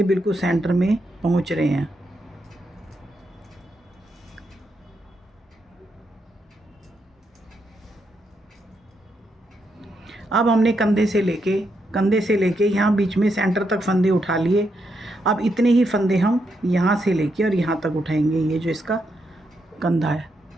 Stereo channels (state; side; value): normal; both; correlation 0.81